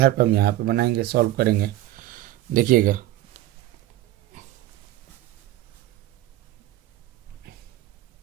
पर हम यहाँ पे बनाएंगे, सॉल्व करेंगे। देखिएगा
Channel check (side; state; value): left; quieter; 14.9 dB